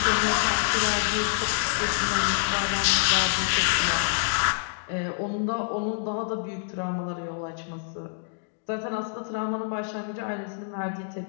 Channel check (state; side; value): silent; right; digital silence